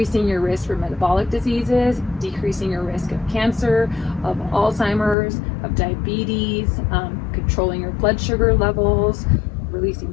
your risk for metabolic diseases, decreasing your risk of cancer, of Alzheimer's, of diabetes, controlling your blood sugar levels, releasing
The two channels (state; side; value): drops out; right; at 5.2 s